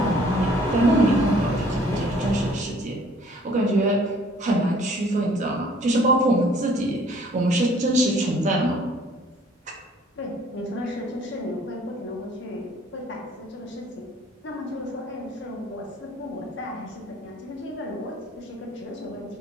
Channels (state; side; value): normal; both; correlation 0.57